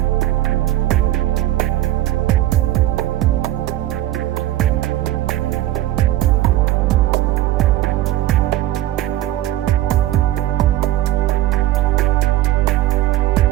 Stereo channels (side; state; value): left; quieter; 14.4 dB